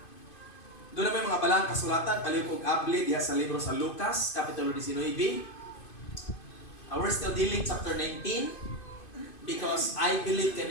Doon na may mga balang kasulatan, palihog og abli diha sa libro sa Lucas, Kapitulo 19. We're still dealing chapter 19 because I believe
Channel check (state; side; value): late; right; 2.5 ms